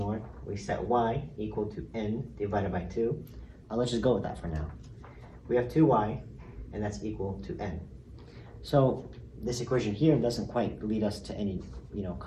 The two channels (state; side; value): identical; both; correlation 1.00